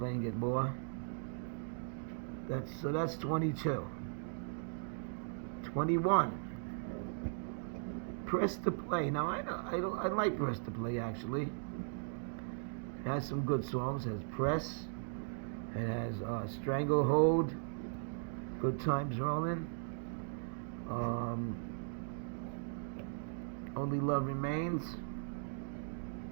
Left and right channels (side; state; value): left; silent; digital silence